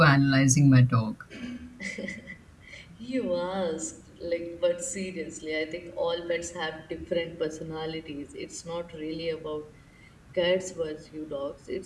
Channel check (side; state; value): both; identical; correlation 1.00